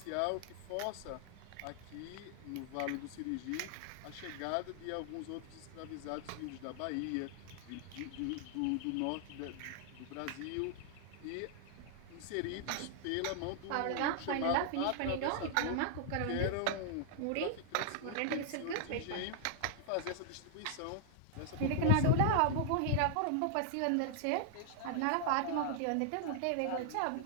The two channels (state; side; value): different; both; correlation -0.01